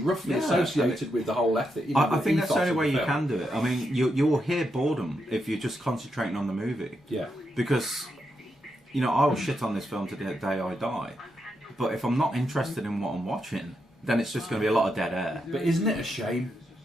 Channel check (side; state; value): both; normal; correlation 0.83